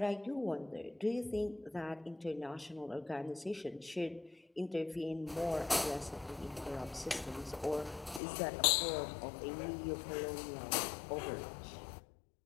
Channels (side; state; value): right; drops out; at 8.2 s